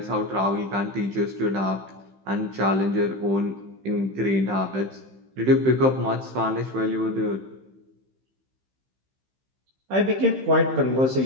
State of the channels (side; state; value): left; late; 15 ms